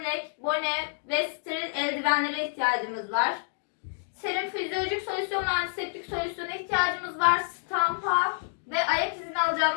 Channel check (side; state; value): right; silent; digital silence